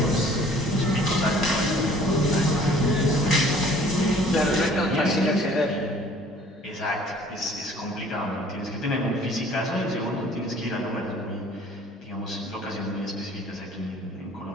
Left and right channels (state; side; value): normal; both; correlation 0.53